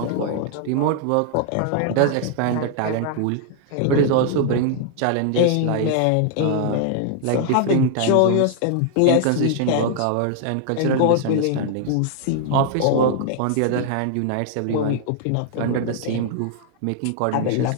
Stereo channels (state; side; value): different; both; correlation 0.00